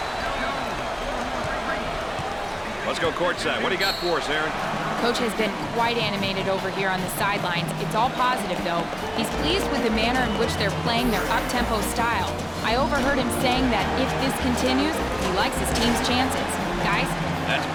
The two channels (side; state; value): both; identical; correlation 1.00